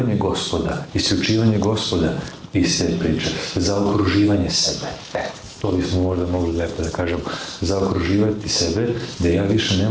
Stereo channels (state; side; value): identical; both; correlation 1.00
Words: Gospoda, isključivanje Gospoda iz te priče, za okruživanje sebe. To bismo možda mogli lepo da kažemo, zaokruživati sebe, da ja više